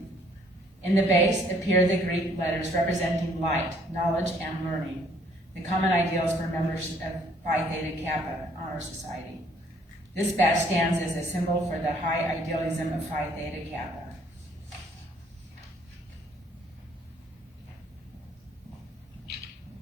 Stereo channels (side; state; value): both; normal; correlation 0.62